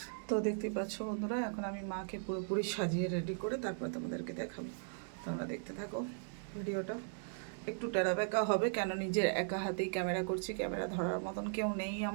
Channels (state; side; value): silent; left; digital silence